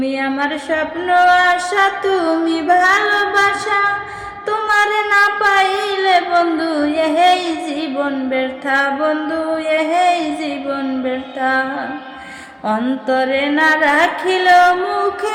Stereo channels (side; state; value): both; identical; correlation 1.00